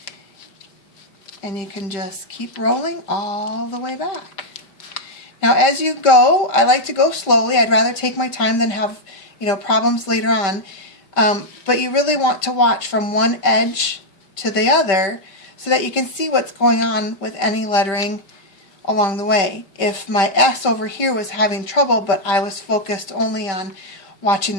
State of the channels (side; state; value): right; late; 5.1 ms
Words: and you can just keep rolling all the way back. Now as you go, I like to go slowly. I'd rather take my time than have problems later on. But you really want to watch from one edge to the other so that you can see what's going on with any lettering along the way. If my S over here was having trouble, but I was focused only on watching